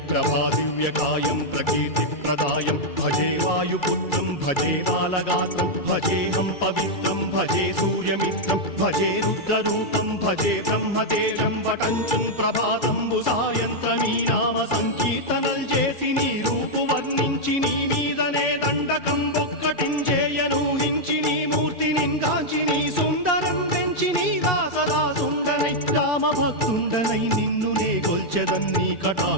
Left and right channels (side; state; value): right; late; 2.3 ms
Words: ప్రభాదివ్యకాయం ప్రకీర్తిప్రదాయం భజే వాయుపుత్రం భజే బాలగాత్రం భజేహం పవిత్రం భజే సూర్యమిత్రం భజే రుద్రరూపం భజే బ్రహ్మదేవం వటంచుం ప్రభాతంబు సాయంత్రమీ నామ సంకీర్తనల్ చేసి నీ రూపు వర్ణించి నీ మీదనే దండకం ఒక్కటించేయనూహించి నీ మూర్తి నిందాచి నీ సుందరం పెంచి నీ దాసదా సుందరై రామభక్తుండనై నిన్ను నే కొల్చెదన్నీ